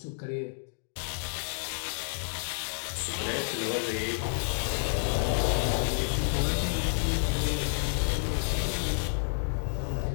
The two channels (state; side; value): silent; right; digital silence